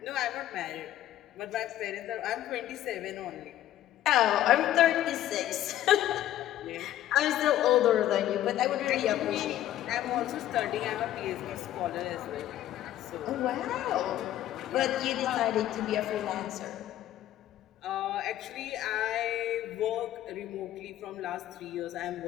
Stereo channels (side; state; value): right; quieter; 12.8 dB